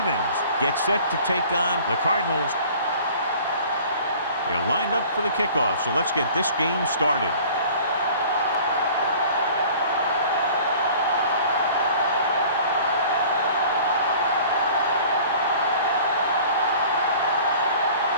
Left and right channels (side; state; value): both; inverted; correlation -0.48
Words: get set to take on the Cardinals. They're lined up for the kickoff, so let's get this game started.